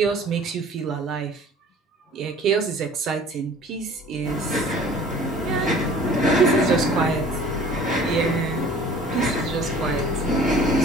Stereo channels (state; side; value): normal; both; correlation 0.48